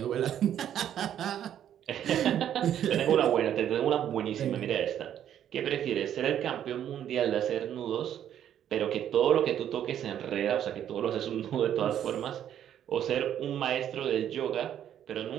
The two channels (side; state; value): left; quieter; 10.2 dB